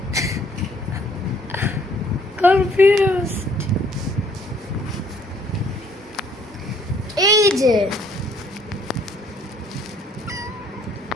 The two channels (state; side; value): normal; both; correlation 0.62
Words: কনফিউজড। এই যে